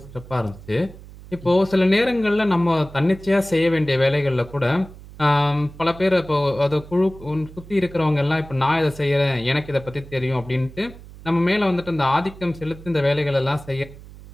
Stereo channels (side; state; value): right; noise; hum, 18 dB below the sound